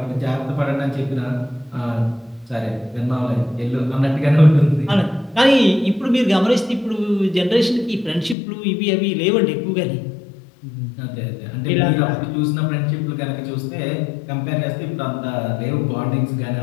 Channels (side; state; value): right; drops out; at 8.3 s